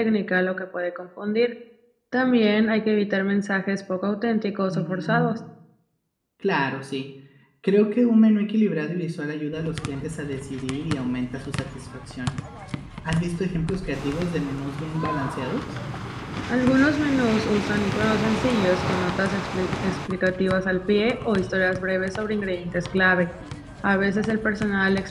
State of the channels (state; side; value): identical; both; correlation 1.00